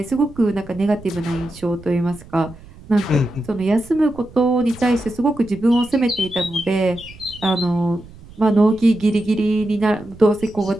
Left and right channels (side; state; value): right; noise; rumble, 20 dB below the sound